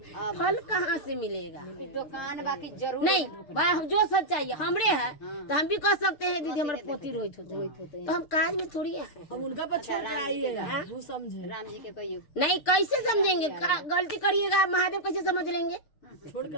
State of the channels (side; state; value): right; late; 6.6 ms